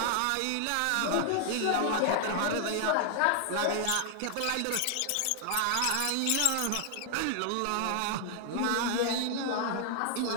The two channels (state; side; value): different; both; correlation 0.00